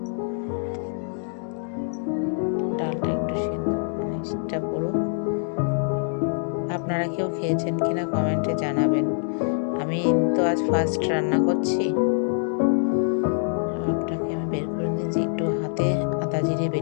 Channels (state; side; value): silent; right; digital silence